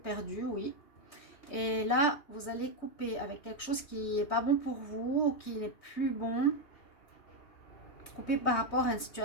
oui. Et là, vous allez couper avec quelque chose qui n'est pas bon pour vous, ou qui n'est plus bon. Couper par rapport à une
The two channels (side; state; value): right; late; 3.2 ms